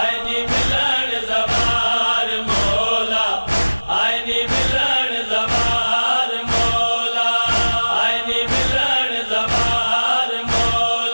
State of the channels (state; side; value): inverted; both; correlation -1.00